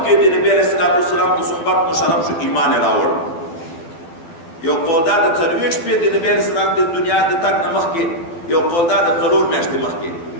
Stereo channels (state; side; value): late; right; 12 ms